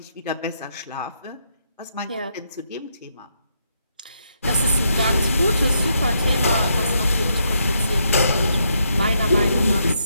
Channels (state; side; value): inverted; both; correlation -0.78